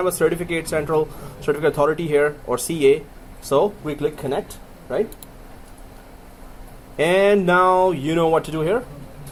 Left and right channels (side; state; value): both; identical; correlation 1.00